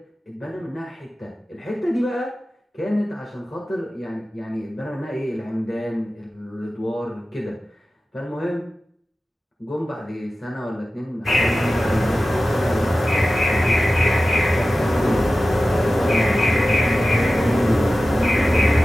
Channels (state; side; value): normal; both; correlation 0.95